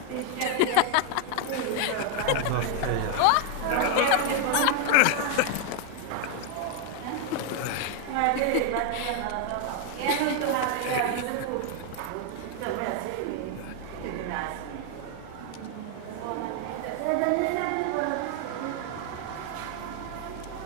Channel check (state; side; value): different; both; correlation 0.01